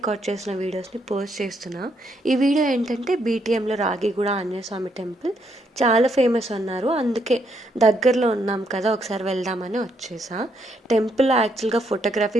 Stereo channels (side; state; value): both; normal; correlation 0.74